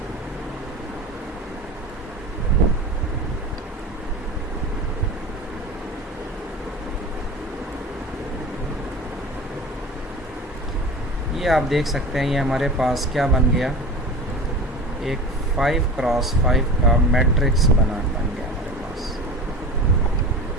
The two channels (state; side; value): normal; both; correlation 0.34